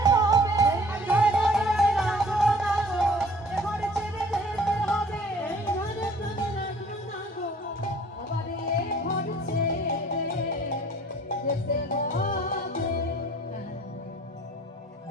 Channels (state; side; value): normal; both; correlation 0.53